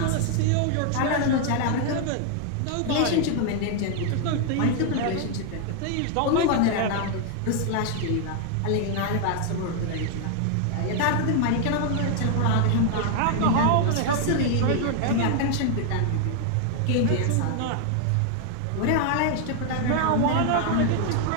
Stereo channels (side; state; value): both; different; correlation 0.00